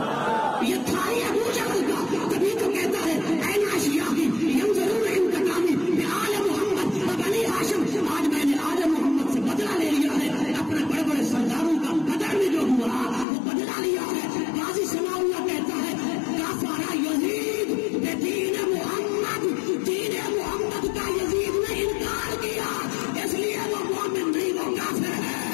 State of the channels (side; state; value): right; drops out; at 13.2 s